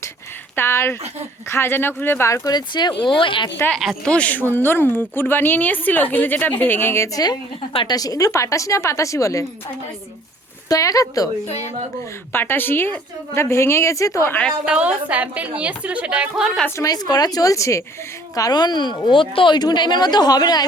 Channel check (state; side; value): normal; both; correlation 0.56